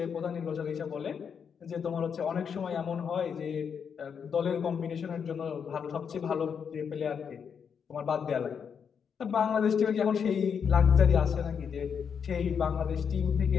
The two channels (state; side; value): quieter; right; 6.9 dB